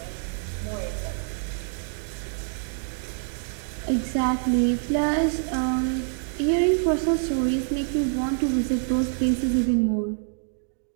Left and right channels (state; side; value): silent; left; 61 dB below the other